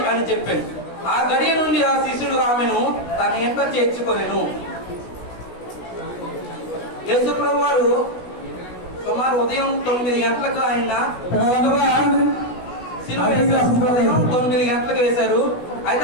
అని చెప్పాను. ఆ గడియ నుండి ఆ శిష్యుడు ఆమెను తన ఇంట చేర్చుకొనెను. యేసు ప్రభు వారు సుమారు ఉదయం 9 గంటలకు ఆయన ఉదయం 9 గంటలకు వేశారు. అయితే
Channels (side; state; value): right; late; 16 ms